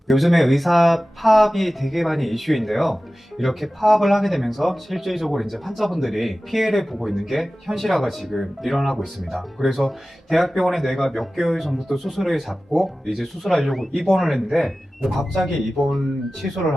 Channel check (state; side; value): normal; both; correlation 0.96